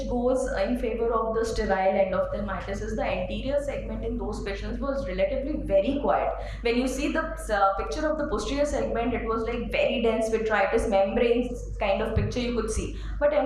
goes in favor of the sterile endophthalmitis is the anterior segment in those patients was relatively very quiet. When you see the picture of the posterior segment, it was like very dense vitritis membranes kind of picture you could see. But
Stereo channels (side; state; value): both; identical; correlation 1.00